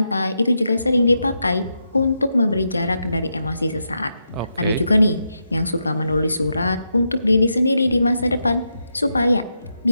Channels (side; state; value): both; inverted; correlation -0.84